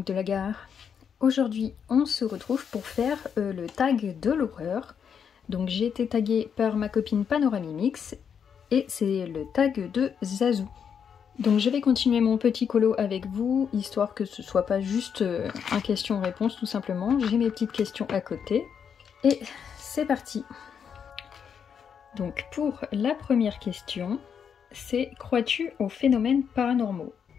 de la gare. Aujourd'hui on se retrouve pour faire le tag de l'horreur. Donc j'ai été taguée par ma copine Panoramimix et c'est le tag de Zazou. Donc je vais continuer mon petit colo avec vous, histoire que ce soit pas juste un question-réponse tout simplement. J'ai mes petites questions à côté et c'est parti. Donc pour la première question, c'est crois-tu aux phénomènes paranormaux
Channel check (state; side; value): quieter; right; 7.4 dB